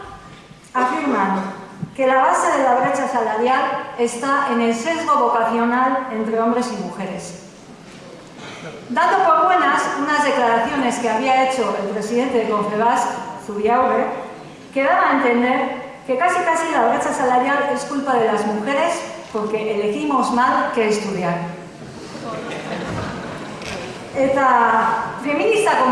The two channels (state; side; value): identical; both; correlation 1.00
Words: afirman que la base de la brecha salarial está en el sesgo vocacional entre hombres y mujeres. Dando por buenas unas declaraciones que había hecho el presidente de Confebask, Zubiaurre, que daba a entender que casi la brecha salarial es culpa de las mujeres porque elegimos mal qué estudiar. Eta feminista